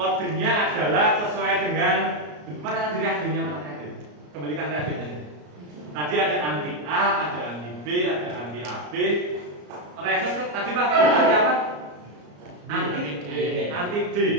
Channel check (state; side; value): late; left; 34 ms